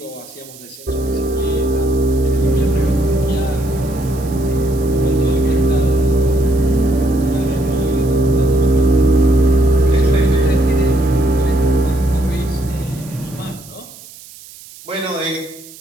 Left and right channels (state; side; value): noise; right; hiss, 19 dB below the sound